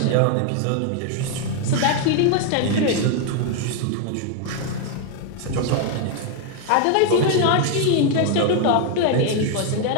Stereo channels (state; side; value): different; both; correlation 0.00